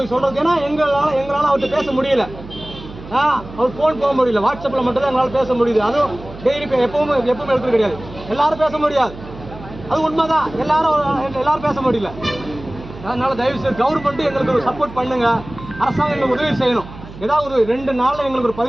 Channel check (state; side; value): noise; right; hum, 15 dB below the sound